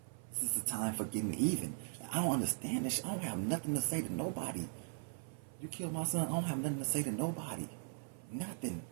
This is a time for getting even. I don't understand this. I don't have nothing to say to nobody. You killed my son, I don't have nothing to say to nobody. Nothing.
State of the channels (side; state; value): left; silent; 52 dB below the other